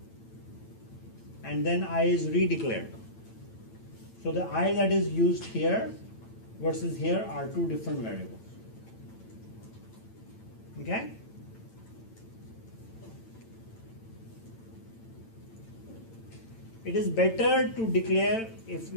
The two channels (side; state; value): right; late; 8.9 ms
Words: And then I is redeclared. So the I that is used here versus here are 2 different variables. Okay? It is better to declare, if